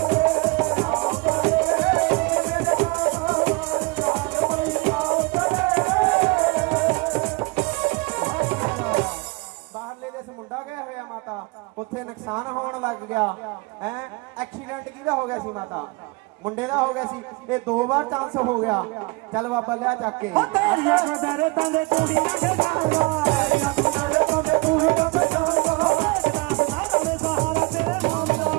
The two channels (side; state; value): left; quieter; 26.0 dB